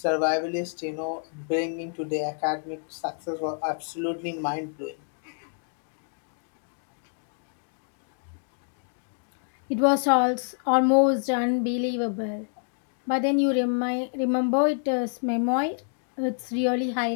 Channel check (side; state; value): right; silent; 59 dB below the other